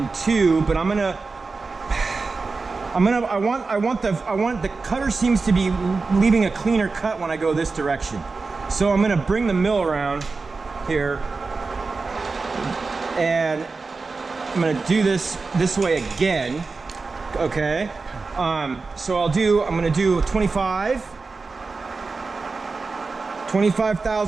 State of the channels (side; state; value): left; quieter; 4.1 dB